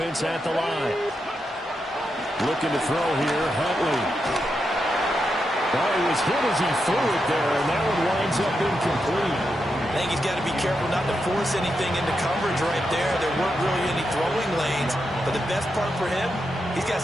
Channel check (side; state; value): both; normal; correlation 0.85